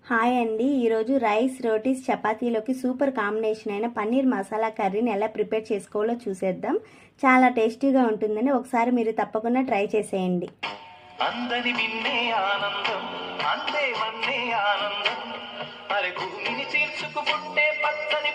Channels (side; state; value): both; identical; correlation 1.00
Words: హాయ్ అండి. ఈరోజు రైస్, రోటీస్, చపాతీలోకి సూపర్ కాంబినేషన్ అయిన పన్నీర్ మసాలా కర్రీని ఎలా ప్రిపేర్ చేసుకోవాలో చూసేద్దాం. చాలా టేస్టీగా ఉంటుందని ఒకసారి మీరు తప్పకుండా ట్రై చేసేయండి. అందరి విన్నే ఆనందం, అందే వన్నే ఆనందం, అరే భూమిని చీల్చుకు పుట్టే పచ్చని